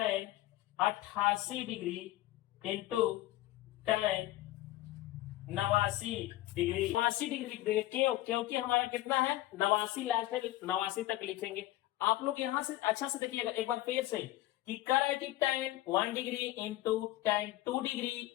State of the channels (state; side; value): quieter; right; 16.1 dB